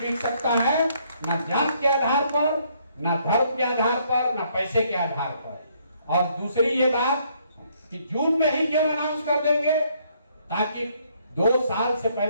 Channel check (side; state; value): both; inverted; correlation -0.68